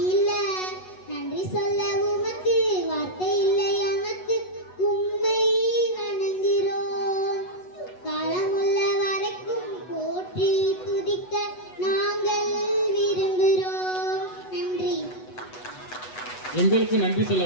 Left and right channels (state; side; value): late; right; 8.1 ms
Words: இல்ல. நன்றி சொல்ல உமக்கு வார்த்தை இல்லை, எனக்கு உம்மை வணங்குகிறோம். காலமுள்ள வரைக்கும் போற்றி துதிக்க நாங்கள் விரும்புகிறோம். நன்றி. எங்களுக்கு நன்றி சொல்ல